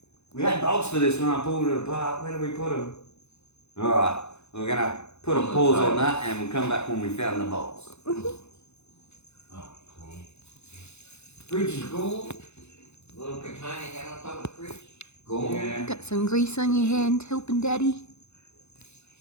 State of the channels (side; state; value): right; late; 0.81 ms